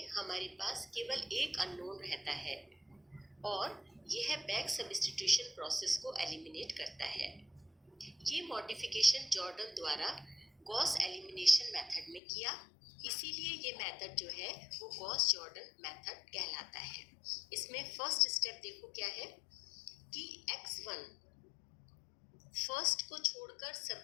हमारे पास केवल एक अननोन रहता है और यह बैक सब्स्टिट्यूशन प्रोसेस को एलिमिनेट करता है। ये मॉडिफिकेशन जॉर्डन द्वारा गॉस एलिमिनेशन मेथड में किया, इसीलिए ये मेथड जो है वो गॉस जॉर्डन मेथड कहलाता है। इसमें फर्स्ट स्टेप देखो क्या है कि x1 फर्स्ट को छोड़कर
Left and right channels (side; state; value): right; drops out; at 12.2 s